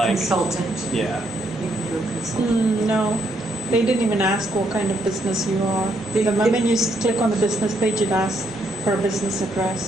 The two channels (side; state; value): both; normal; correlation 0.73